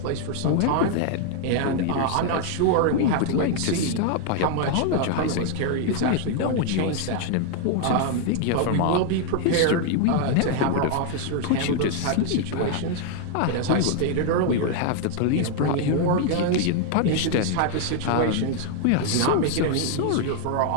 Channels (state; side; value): different; both; correlation 0.00